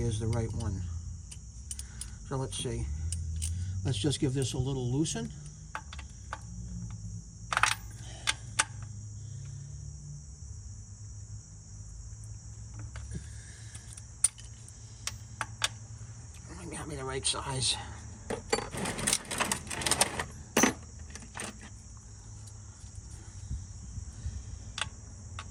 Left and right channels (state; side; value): identical; both; correlation 1.00